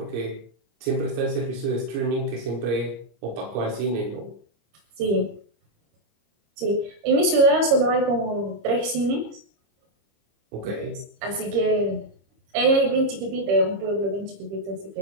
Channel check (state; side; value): late; left; 26 ms